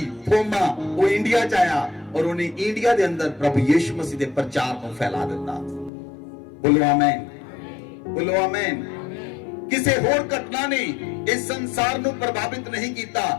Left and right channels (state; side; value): drops out; right; at 5.9 s